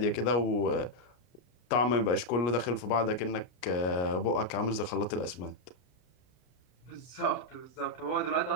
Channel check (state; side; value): late; right; 33 ms